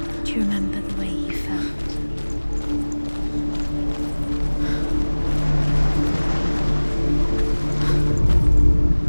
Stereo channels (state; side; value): inverted; both; correlation -1.00